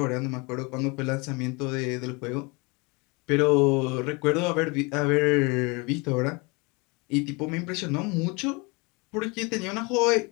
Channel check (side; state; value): right; quieter; 28.2 dB